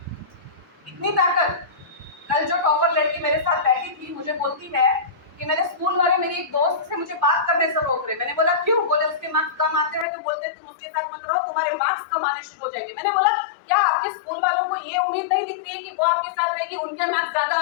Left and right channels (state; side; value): drops out; right; at 10.1 s